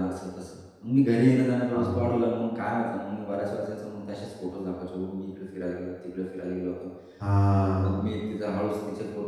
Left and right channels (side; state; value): both; identical; correlation 1.00